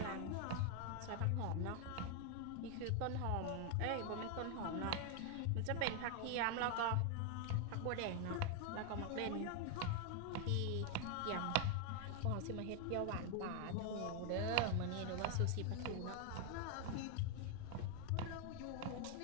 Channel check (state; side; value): different; both; correlation 0.00